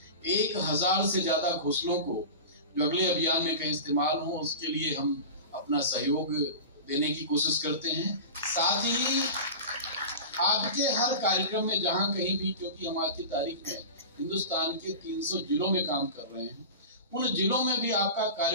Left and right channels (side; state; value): both; inverted; correlation -0.30